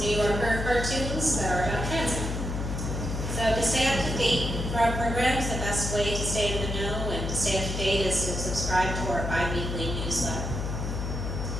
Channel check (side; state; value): left; noise; hum, 3 dB below the sound